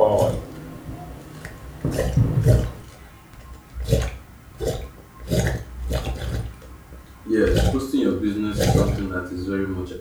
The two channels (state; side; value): identical; both; correlation 1.00